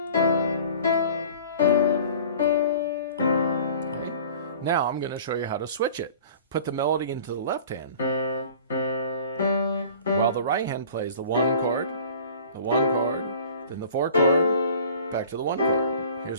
Twinkle, Now I'm going to show you how to switch it. Put the melody into the left hand, while the right hand plays the one chord, then the four chord, back to the one chord.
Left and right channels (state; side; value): inverted; both; correlation -0.46